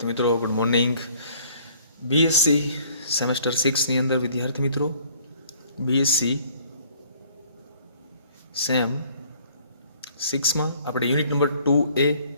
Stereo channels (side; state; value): both; inverted; correlation -0.58